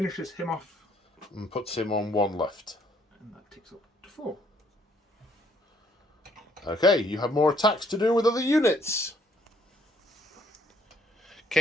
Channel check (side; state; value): both; normal; correlation 0.66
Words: him off. And puts him on 1 left. And that takes up to 4. Okay, you have more attacks to do with other units.